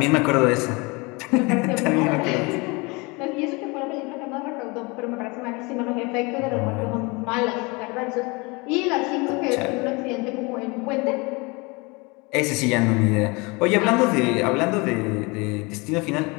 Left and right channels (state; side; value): quieter; right; 27.1 dB